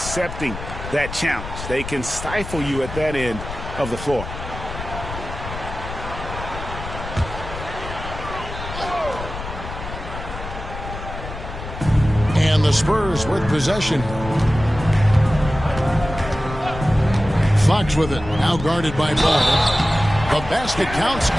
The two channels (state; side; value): noise; left; rumble, 9 dB below the sound